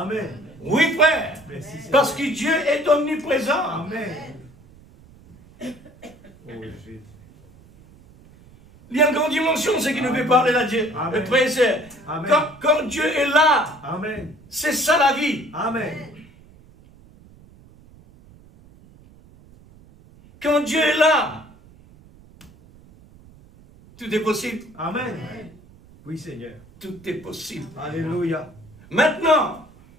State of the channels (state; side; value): noise; right; rumble, 25 dB below the sound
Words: Oui, frère. Merci, Seigneur. Parce que Dieu est omniprésent. Amen. Oh Jésus. Il y a une grande dimension, c'est qui nous fait parler là, Dieu. Amen. Le frère et sœur. Amen. Quand Dieu est là, Amen. c'est ça la vie. Amen. Quand Dieu est là, tout est possible. Amen. Oui, Seigneur. Tout est possible. Alléluia. Maintenant,